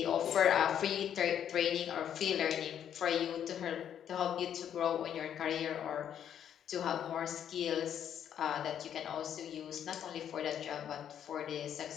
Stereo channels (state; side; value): quieter; right; 9.4 dB